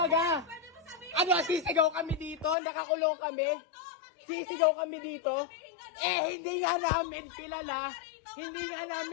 Pwede mo sabihin. Ano, sisigaw kami dito? Nakakulong kami? Sisigaw kami dito? Eh, hindi nga namin kilala. Hindi nga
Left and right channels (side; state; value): right; drops out; at 2.6 s